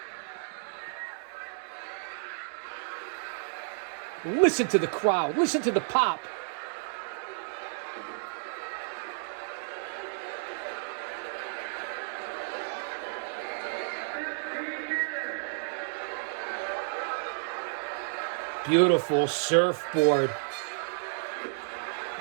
Listen to the crowd. Listen to the pop. Beautiful surfboard.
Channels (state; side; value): silent; left; digital silence